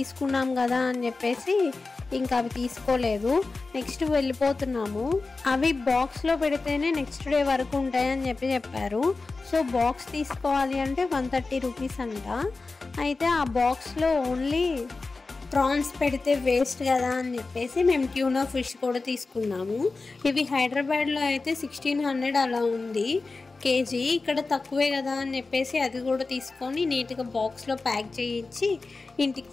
కదా అని చెప్పేసి ఇంకా అవి తీసుకోలేదు. నెక్స్ట్ వెళ్ళిపోతున్నాము. అవి బాక్స్లో పెడితేనే నెక్స్ట్ డే వరకు ఉంటాయని చెప్పి చెప్పారు. సో బాక్స్ తీసుకోవాలి అంటే 130 రూపీస్ అంట. అయితే ఆ బాక్స్లో ఓన్లీ ప్రాన్స్ పెడితే వేస్ట్ కదా అని చెప్పేసి మేము ట్యూనా ఫిష్ కూడా తీసుకున్నాము. ఇవి హైదరాబాద్లో అయితే 1600 అలా ఉంది కేజీ. ఇక్కడ తక్కువే కదా అని చెప్పేసి అది కూడా తీసుకొని నీట్గా బాక్స్లో ప్యాక్ చేయించి ఇంటికి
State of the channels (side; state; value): right; quieter; 3.8 dB